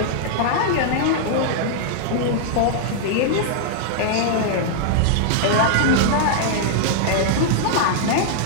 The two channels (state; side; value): different; both; correlation -0.01